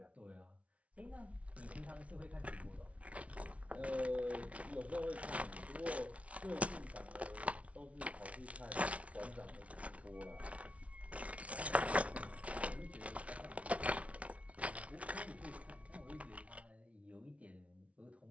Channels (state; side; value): late; left; 0.064 ms